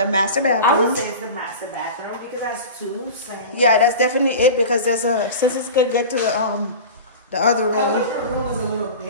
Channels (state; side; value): inverted; both; correlation -0.32